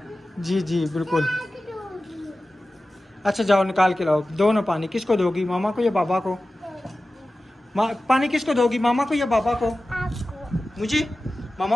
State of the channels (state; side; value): normal; both; correlation 0.95